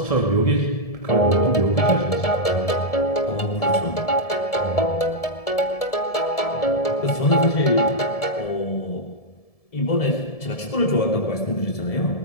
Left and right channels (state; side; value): late; right; 1.7 ms